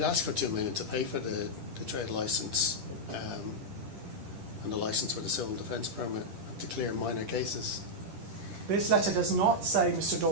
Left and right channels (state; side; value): late; left; 10 ms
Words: asks for 2 million to pay for the trade licence and the licence for the civil defence permit to clear minor cases. This letter does not say, Mr.